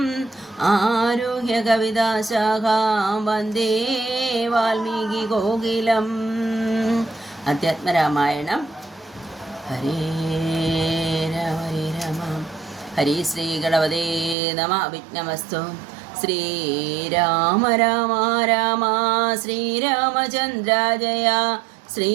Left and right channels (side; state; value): left; drops out; at 14.4 s